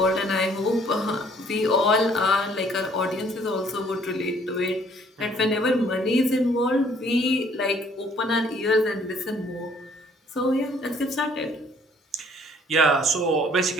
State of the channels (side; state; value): both; normal; correlation 0.61